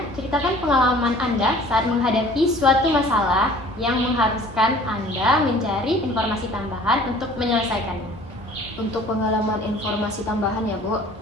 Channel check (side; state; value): both; normal; correlation 0.50